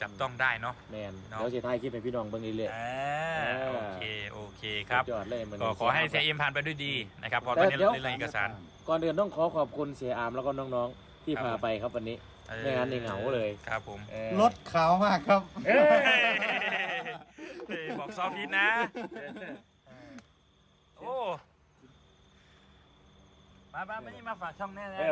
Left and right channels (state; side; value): identical; both; correlation 1.00